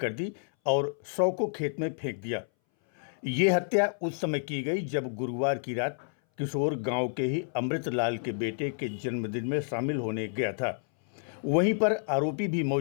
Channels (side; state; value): right; silent; 58 dB below the other